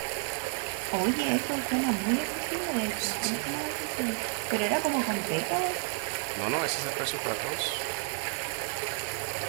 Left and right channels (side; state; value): left; silent; 57 dB below the other